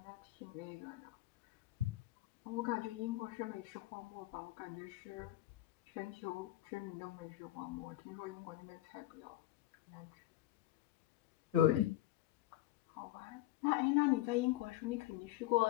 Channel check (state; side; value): quieter; right; 15.2 dB